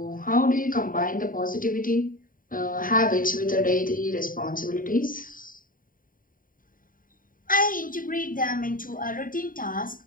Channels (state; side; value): late; right; 0.40 ms